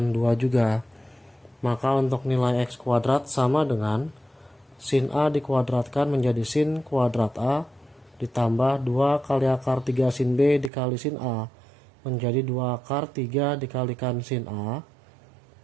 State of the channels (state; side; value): drops out; left; at 10.7 s